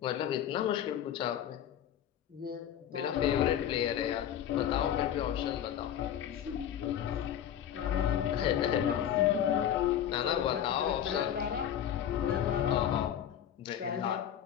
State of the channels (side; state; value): right; quieter; 10.1 dB